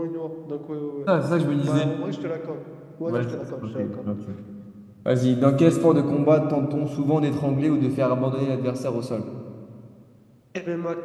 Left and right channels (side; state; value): both; identical; correlation 1.00